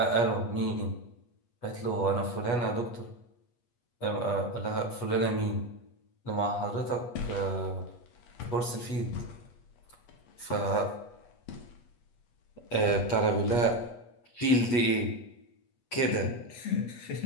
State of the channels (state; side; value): late; right; 8.3 ms